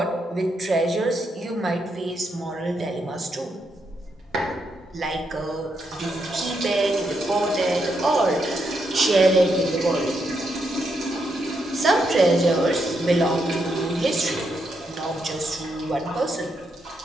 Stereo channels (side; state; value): both; normal; correlation 0.80